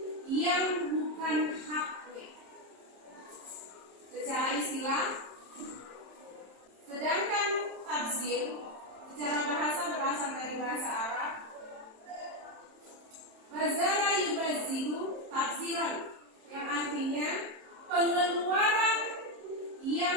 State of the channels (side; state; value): left; late; 26 ms